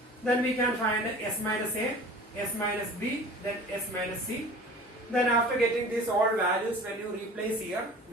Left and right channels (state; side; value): normal; both; correlation 0.42